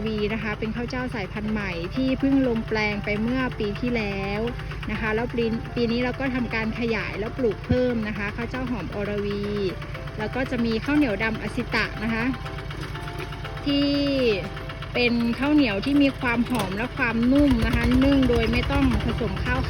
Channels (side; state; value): both; identical; correlation 1.00